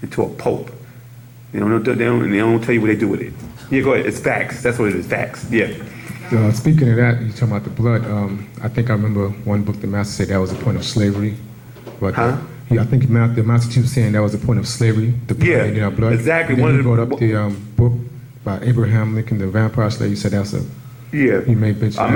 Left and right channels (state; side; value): identical; both; correlation 1.00